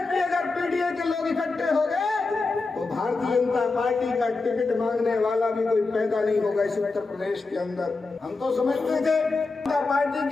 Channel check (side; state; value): right; quieter; 3.8 dB